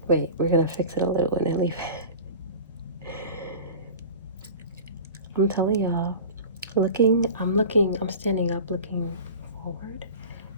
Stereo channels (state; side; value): inverted; both; correlation -0.36